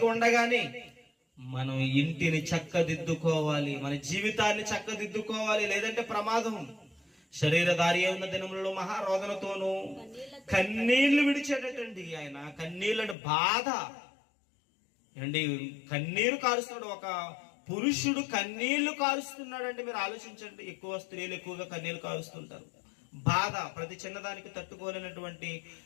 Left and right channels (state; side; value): drops out; right; at 13.2 s